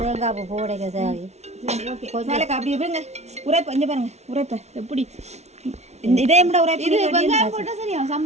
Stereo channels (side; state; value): left; late; 0.32 ms